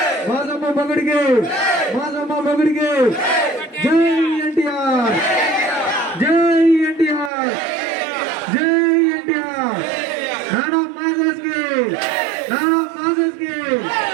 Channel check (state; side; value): drops out; left; at 7.3 s